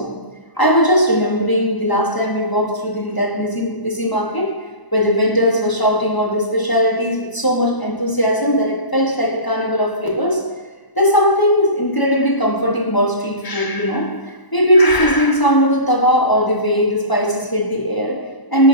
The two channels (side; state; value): right; late; 1.0 ms